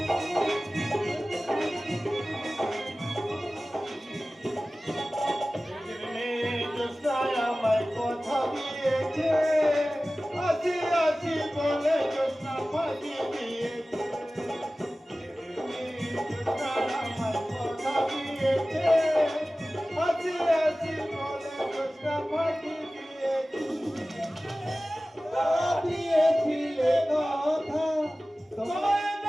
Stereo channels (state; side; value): normal; both; correlation 0.97